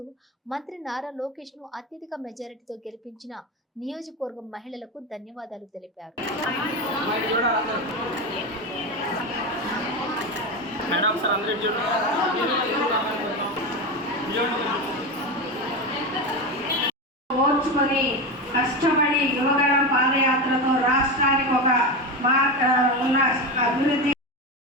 మంత్రి నారా లోకేష్ ను అత్యధిక మెజారిటీతో గెలిపించిన నియోజకవర్గం మహిళలకు ధన్యవాదాలు తెలిపారు. ఓర్చుకొని కష్టపడి యువగళం పాదయాత్రతో రాష్ట్రానికి ఒక ఉన్న అభివృద్ధి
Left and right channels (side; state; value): both; normal; correlation 0.18